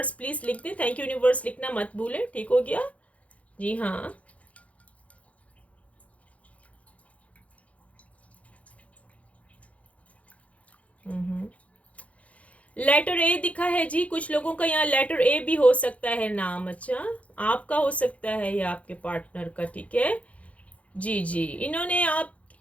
please लिख दे, थैंक यू यूनिवर्स लिखना मत भूले, ठीक हो गया। जी हाँ, लेटर ए दिखा है जी, कुछ लोगों का यहाँ लेटर ए भी हो सकता है नाम। अच्छा, आपका हो सकता है या आपके पार्टनर का, ठीक है। जी जी, इन्होंने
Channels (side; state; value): right; late; 0.065 ms